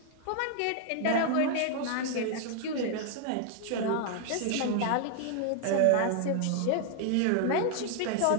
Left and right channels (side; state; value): both; different; correlation 0.00